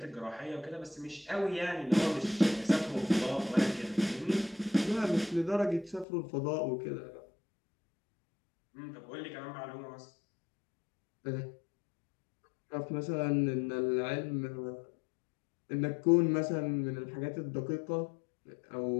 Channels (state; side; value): drops out; right; at 6.1 s